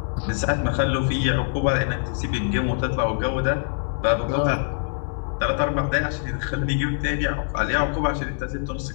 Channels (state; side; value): silent; right; digital silence